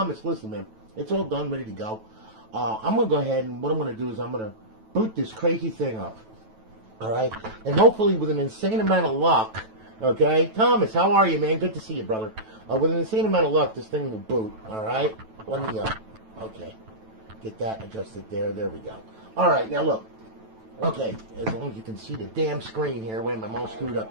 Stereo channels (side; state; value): left; late; 9.1 ms